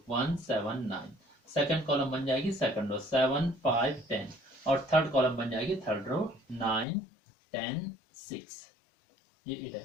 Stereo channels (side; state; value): right; drops out; at 6.9 s